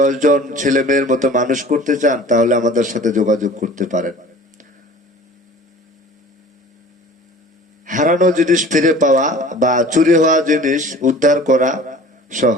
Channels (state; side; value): normal; both; correlation 0.44